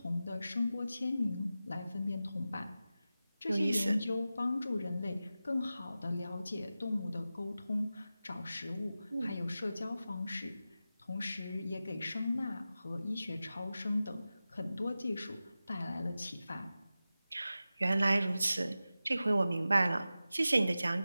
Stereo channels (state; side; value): inverted; both; correlation -0.94